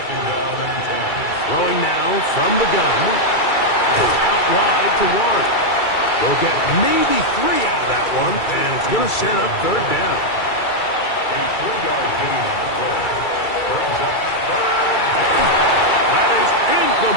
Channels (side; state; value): right; late; 2.3 ms